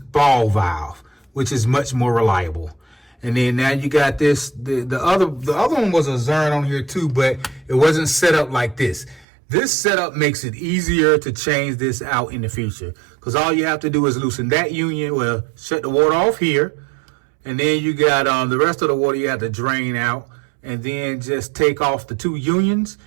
valve, which is much more reliable. And then now you got this. The other one was a Zern on here too, but it wasn't set up like this. This setup makes it easier to change this out in the future, because all you have to do is loosen that union. Well, shut the water off here, and then you got the rest of the water you have to drain out, and then just take off the two unions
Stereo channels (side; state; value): left; drops out; at 9.2 s